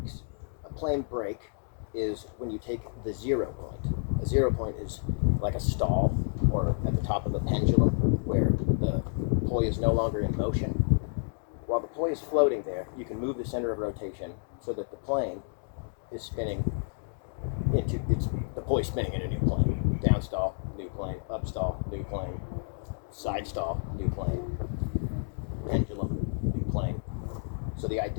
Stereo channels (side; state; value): right; silent; digital silence